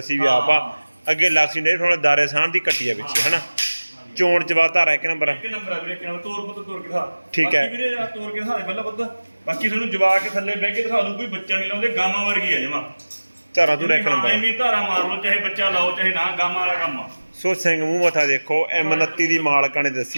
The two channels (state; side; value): inverted; both; correlation -1.00